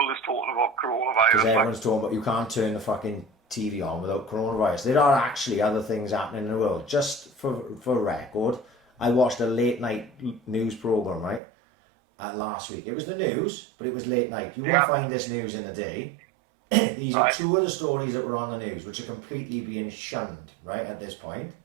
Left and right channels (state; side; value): drops out; left; at 11.4 s